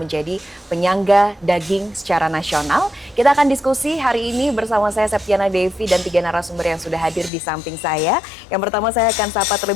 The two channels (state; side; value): drops out; right; at 7.3 s